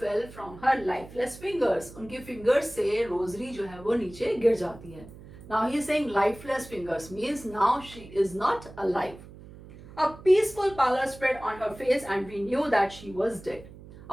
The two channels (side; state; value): right; noise; hum, 18 dB below the sound